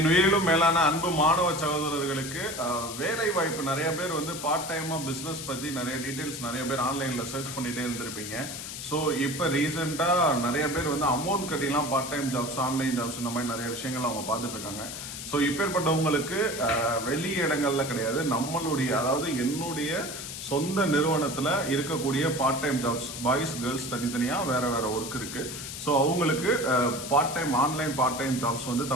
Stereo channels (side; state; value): left; noise; hiss, 8 dB below the sound